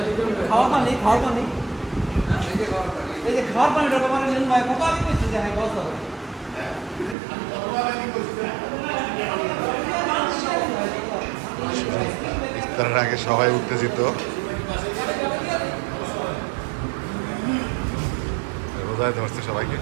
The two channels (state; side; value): drops out; left; at 7.2 s